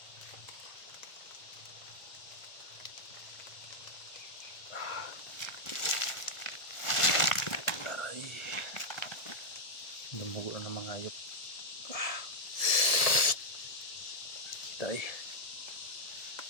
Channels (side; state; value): right; late; 1.4 ms